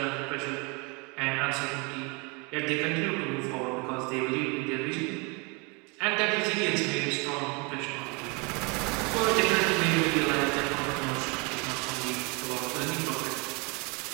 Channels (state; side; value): quieter; left; 30.4 dB